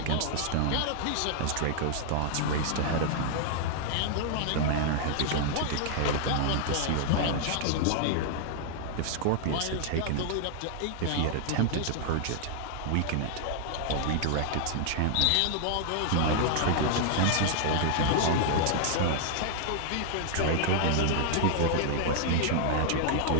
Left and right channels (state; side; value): different; both; correlation -0.01